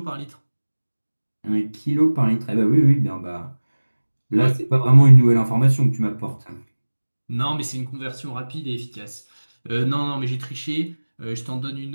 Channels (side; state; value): both; inverted; correlation -1.00